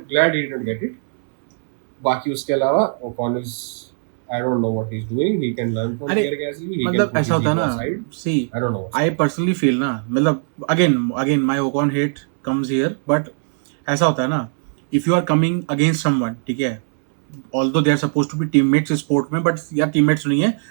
glad he didn't get it. बाकी उसके अलावा Ocon is, I don't know what he's doing. He can learn from Pierre Gasly. मतलब ऐसा होता है ना, see, I don't know. I personally feel ना, मतलब again my Ocon hate comes here, but ऐसा होता है ना, if you are coming against someone, ठीक है, although they are supposed to be teammates इस sport में, but यार teammates नहीं है,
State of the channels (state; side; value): silent; left; 66 dB below the other